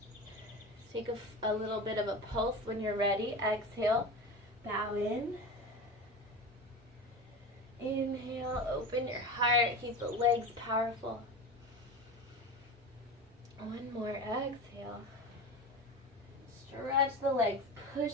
Take a little bit of a pulse when you're ready. Exhale, bow in. Inhale, open your heart, keep the legs powerful. One more, exhale. Stretch the legs, push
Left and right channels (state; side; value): normal; both; correlation 0.28